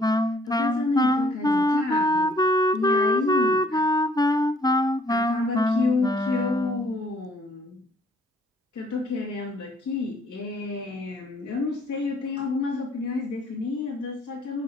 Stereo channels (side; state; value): both; normal; correlation 0.62